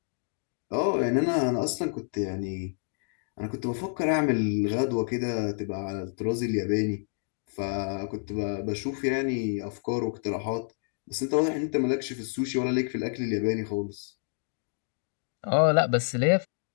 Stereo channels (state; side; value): silent; right; digital silence